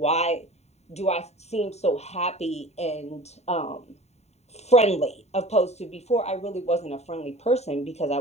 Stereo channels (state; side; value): late; right; 0.32 ms